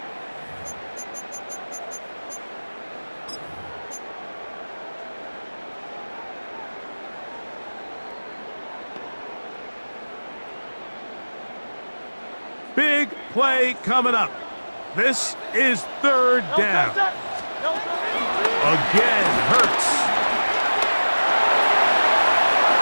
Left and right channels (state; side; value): inverted; both; correlation -1.00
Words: Big play coming up. This is third down. Again, Hurts.